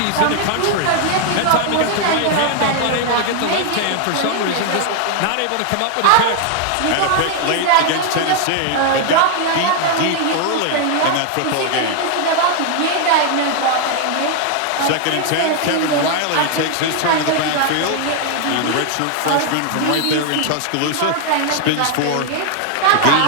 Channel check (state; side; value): different; both; correlation 0.00